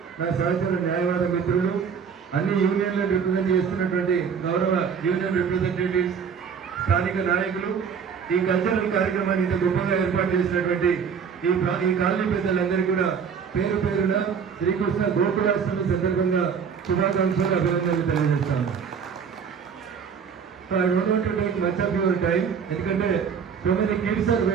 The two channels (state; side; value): quieter; left; 6.7 dB